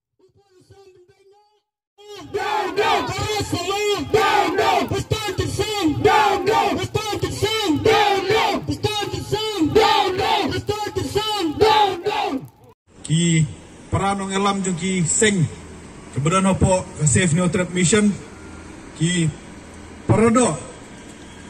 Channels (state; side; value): identical; both; correlation 1.00